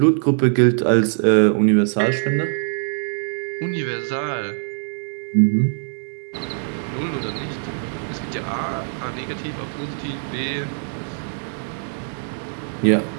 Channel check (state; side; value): silent; left; digital silence